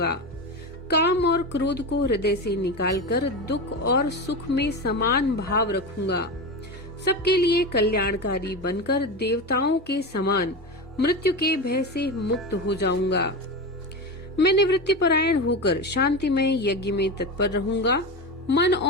काम और क्रोध को हृदय से निकालकर दुख और सुख में समान भाव रखूंगा। सबके लिए कल्याणकारी बनकर देवताओं के समान मृत्यु के भय से मुक्त हो जाऊंगा। मैं निवृत्ति परायण होकर शांतिमय यज्ञ में तत्पर रहूंगा। मन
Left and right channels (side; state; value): both; normal; correlation 0.21